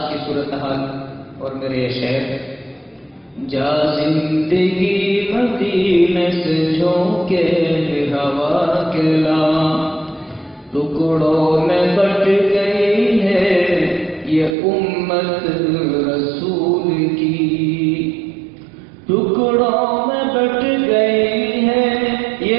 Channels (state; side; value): drops out; left; at 14.6 s